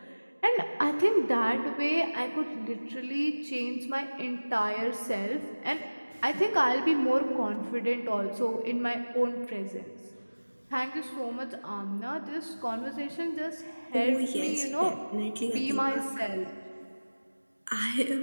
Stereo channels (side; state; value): both; inverted; correlation -1.00